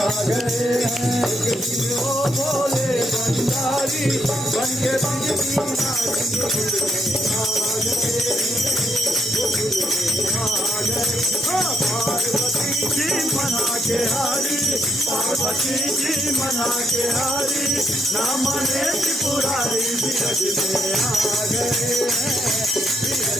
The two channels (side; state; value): both; normal; correlation 0.76